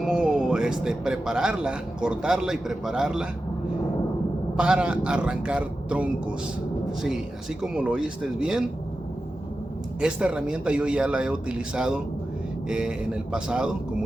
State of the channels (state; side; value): normal; both; correlation 0.93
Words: prepararla, cortarla y prepararla para arrancar troncos. Sí, así como lo oíste bien, esta herramienta yo ya la he utilizado en el pasado,